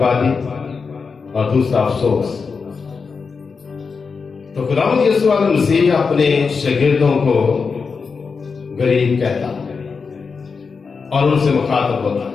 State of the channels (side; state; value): right; quieter; 5.2 dB